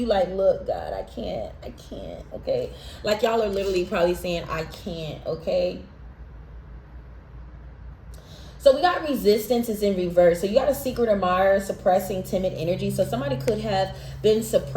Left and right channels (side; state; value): both; identical; correlation 1.00